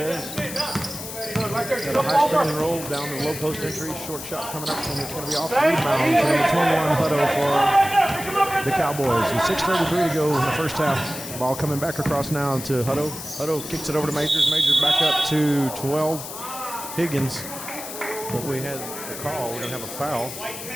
Got a high screen and roll down the low post entry. Short shot coming up, and it's going to be off the rebound. So number 21 Hutto for the Cowboys. And 6:33 to go in the first half. Ball coming back across now to Hutto. Hutto kicks it over to Majors. Majors back up to 12 Higgins. But we had a call. We're going to have a foul.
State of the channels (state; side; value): noise; left; hiss, 10 dB below the sound